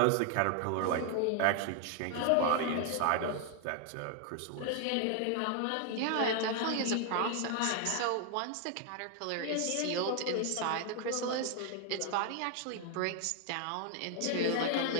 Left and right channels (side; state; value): both; different; correlation 0.00